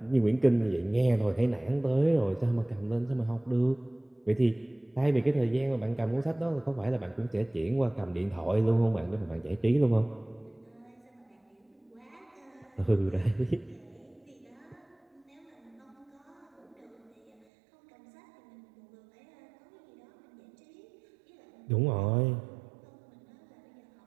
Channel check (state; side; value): drops out; left; at 17.4 s